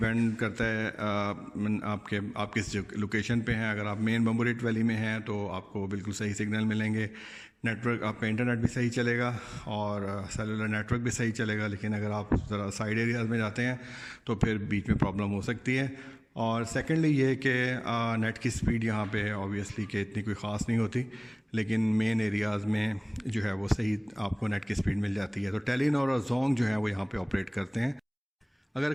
करता है आप किस लोकेशन पे हैं। अगर आप मेन बम्बोरेट वैली में हैं तो आपको बिल्कुल सही सिग्नल मिलेंगे, नेटवर्क आपका इंटरनेट भी सही चलेगा और सेलुलर नेटवर्क भी सही चलेगा। लेकिन अगर आप ज़रा साइड एरियाज़ में जाते हैं तो फिर बीच में प्रॉब्लम हो सकती है। और सेकेंडली ये कि नेट की स्पीड यहाँ पे ऑब्वियसली कि इतनी कोई ख़ास नहीं होती, लेकिन मेन एरियाज़ में जो है वो सही आपको नेट की स्पीड मिल जाती है। तो टेलीनॉर और जोंग जो है वो यहाँ पे ऑपरेट करते हैं। अगर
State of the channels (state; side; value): identical; both; correlation 1.00